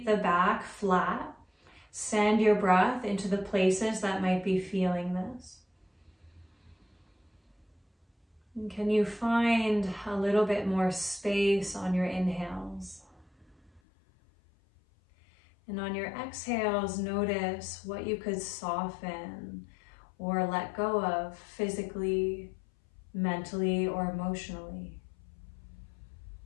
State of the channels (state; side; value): drops out; right; at 13.8 s